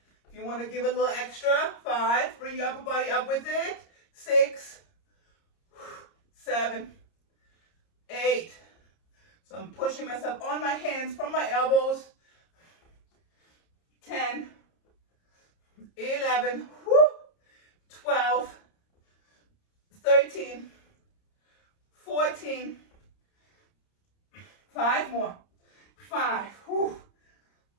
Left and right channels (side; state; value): right; late; 30 ms